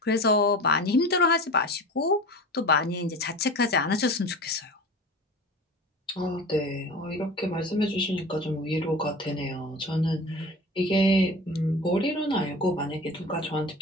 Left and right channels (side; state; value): both; normal; correlation 0.35